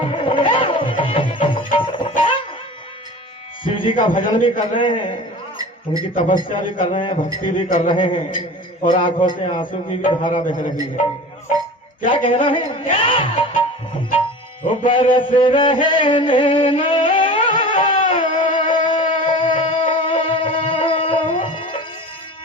शिव जी का भजन भी कर रहे हैं, उनकी तपस्या भी कर रहे हैं, भक्ति भी कर रहे हैं और आंखों से आंसू की भी धारा बह रही है। क्या कहना है? वो बरस रहे नैना,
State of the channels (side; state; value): both; normal; correlation 0.36